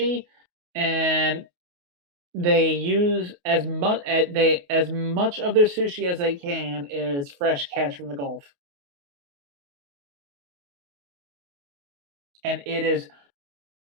and they use as much of their sushi as they can is fresh catch from the Gulf. And it is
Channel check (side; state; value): left; late; 28 ms